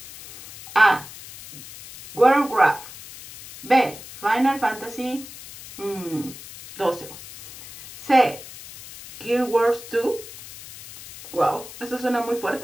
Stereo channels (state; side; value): noise; left; hiss, 16 dB below the sound